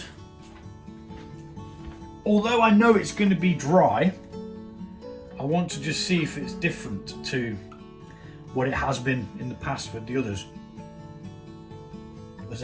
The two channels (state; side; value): identical; both; correlation 1.00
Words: although I know it's going to be dry, I want to just see if it's different to what it has been in the past with the others. There's